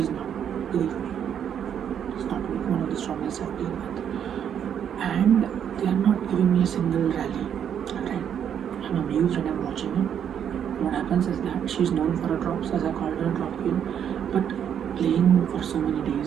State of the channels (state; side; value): quieter; left; 8.8 dB